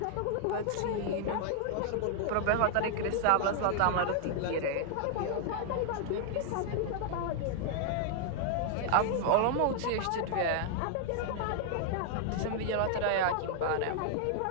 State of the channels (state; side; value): different; both; correlation 0.00